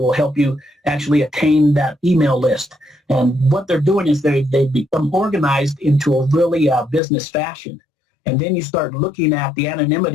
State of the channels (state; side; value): drops out; right; at 7.0 s